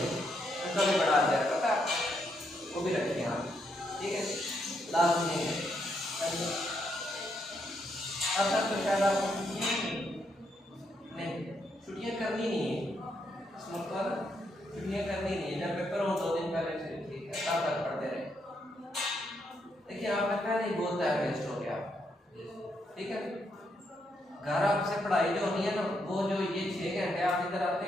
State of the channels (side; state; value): both; normal; correlation 0.78